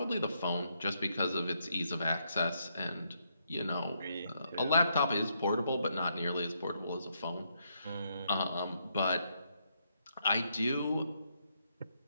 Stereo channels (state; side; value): inverted; both; correlation -0.77